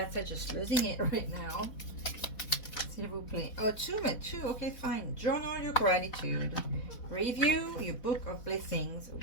are just losing it right now. S'il vous plaît. Oh, two. Okay, fine. Journal your gratitude. Review your book of blessings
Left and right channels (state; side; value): late; right; 4.1 ms